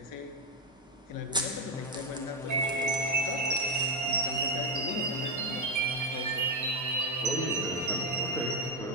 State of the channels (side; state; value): both; normal; correlation 0.06